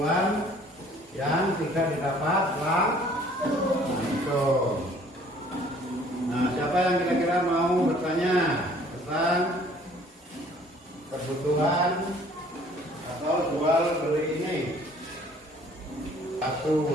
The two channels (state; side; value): normal; both; correlation 0.56